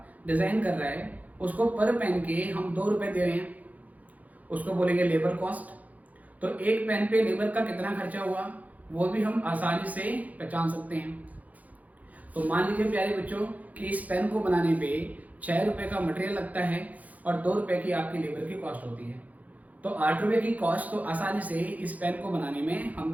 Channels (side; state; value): left; late; 0.076 ms